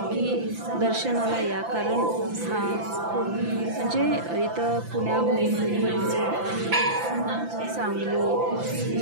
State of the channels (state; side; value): late; left; 5.9 ms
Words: दर्शनाला या, कारण हा खूप म्हणजे इथं पुण्याहून सांगली